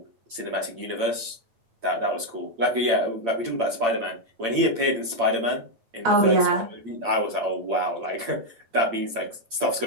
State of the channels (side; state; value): left; late; 8.8 ms